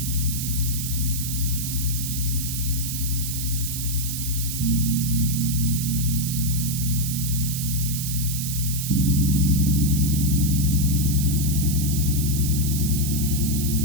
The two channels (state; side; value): noise; right; hiss, 4 dB below the sound